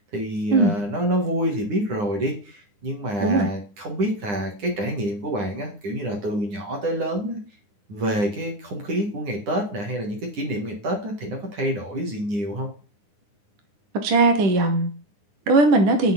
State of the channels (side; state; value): left; late; 9.9 ms